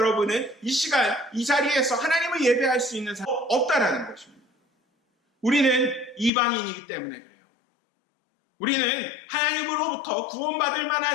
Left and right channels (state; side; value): drops out; right; at 6.3 s